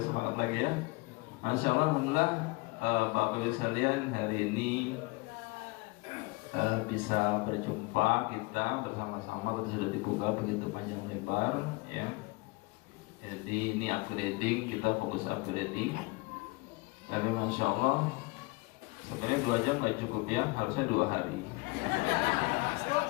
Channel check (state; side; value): quieter; right; 25.9 dB